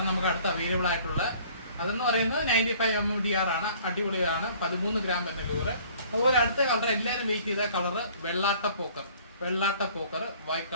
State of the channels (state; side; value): inverted; both; correlation -0.54